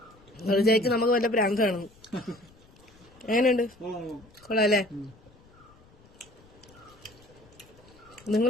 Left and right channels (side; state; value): left; noise; rumble, 27 dB below the sound